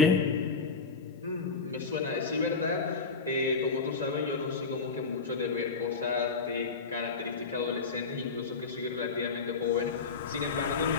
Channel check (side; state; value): right; quieter; 4.6 dB